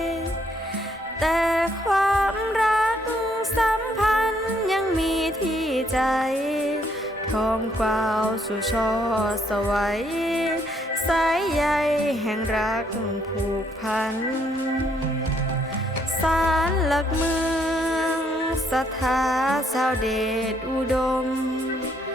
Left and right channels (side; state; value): both; normal; correlation 0.70